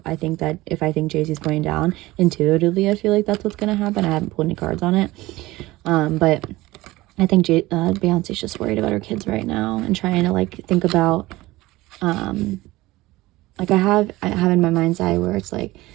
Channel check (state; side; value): quieter; left; 18.9 dB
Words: I think Jay-Z's going down. Intuitively, I feel like that's what's gonna happen. I haven't pulled any cards on it, but I think Beyonce's just worried about her kids right now and trying to like think about, like I have in my mind's eye where it's like,